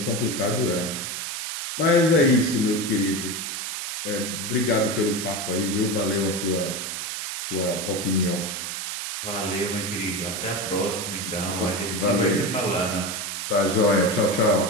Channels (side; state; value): right; noise; hiss, 5 dB below the sound